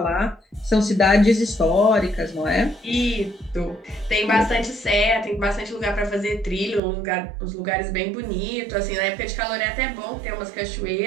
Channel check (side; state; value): left; drops out; at 6.8 s